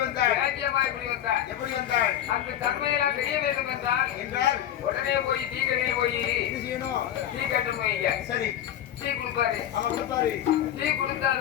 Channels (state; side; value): quieter; right; 11.1 dB